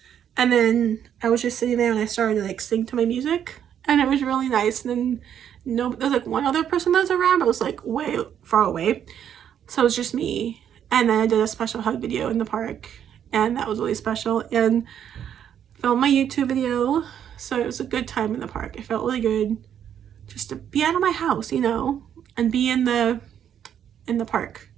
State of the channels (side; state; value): left; quieter; 9.3 dB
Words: And then I was just sitting there and I started to like sing to my music, and it was really nice. And then there's like one other person that was around, but it was like way far away. So it was just me. And then I did a special hug video in the park, and that was really special, and filmed my YouTube video. So it was a good time in the park. It felt really good just to be out of my house, you know, and be in the park.